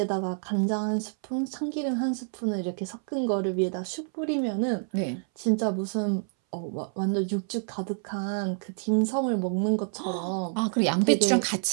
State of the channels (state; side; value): silent; left; 59 dB below the other